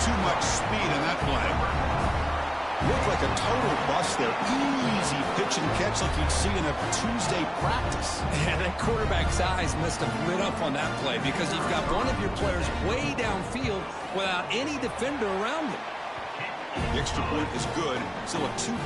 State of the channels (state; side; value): identical; both; correlation 1.00